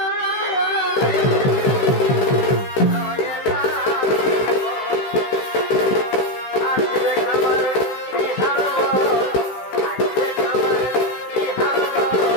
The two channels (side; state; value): right; late; 16 ms